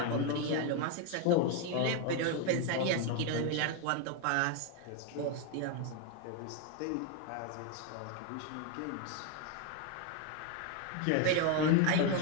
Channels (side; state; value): both; different; correlation 0.01